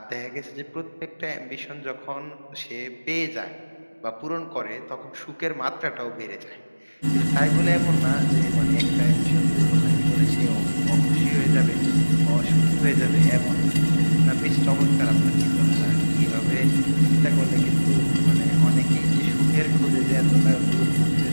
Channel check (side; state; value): both; inverted; correlation -1.00